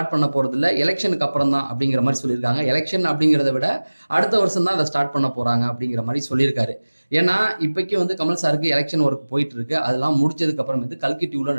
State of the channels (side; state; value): both; inverted; correlation -1.00